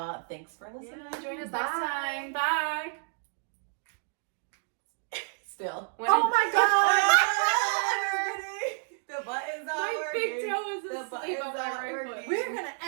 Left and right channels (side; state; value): left; silent; digital silence